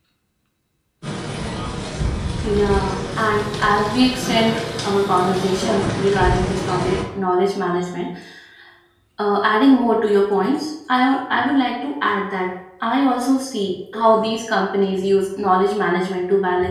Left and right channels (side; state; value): both; identical; correlation 1.00